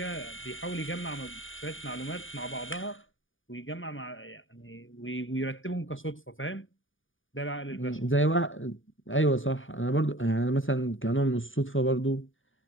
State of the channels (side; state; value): right; late; 0.57 ms